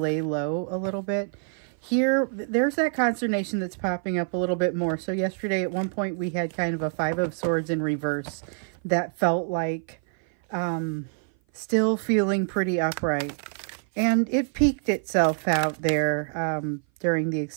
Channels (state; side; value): silent; left; 57 dB below the other